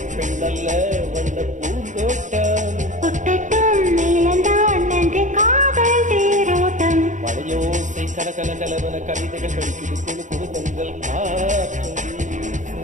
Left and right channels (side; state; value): left; late; 0.36 ms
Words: பெண்ணல்ல வந்த பூந்தோட்டம் ஒட்டட்டும் இழந்தான் நன்றி காதல் தேரோட்டம். மழையோசை கல கல கலவன கவிதைகள் படிக்குது குழு குழு தென்றல் காற்றும்